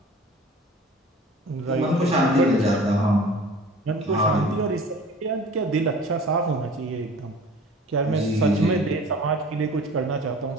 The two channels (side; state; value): both; normal; correlation 0.44